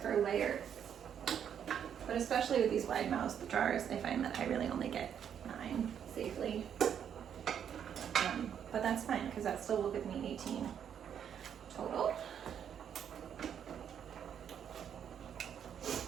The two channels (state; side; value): quieter; left; 8.6 dB